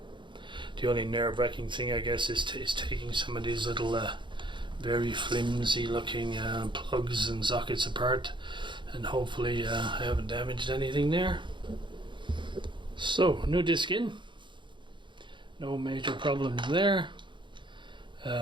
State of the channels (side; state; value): left; late; 0.23 ms